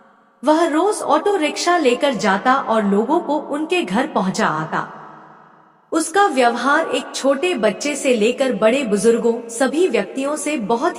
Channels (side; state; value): both; identical; correlation 1.00